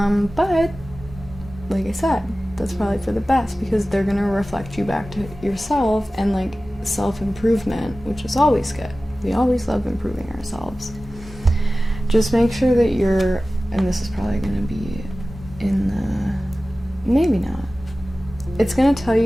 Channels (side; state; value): both; normal; correlation 0.96